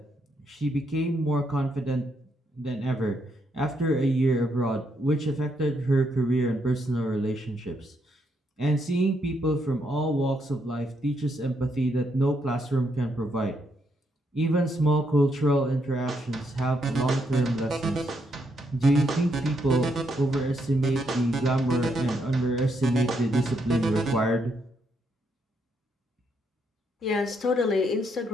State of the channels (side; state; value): both; normal; correlation 0.76